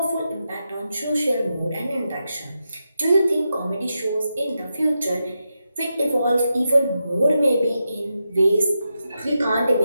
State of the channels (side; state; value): both; inverted; correlation -0.87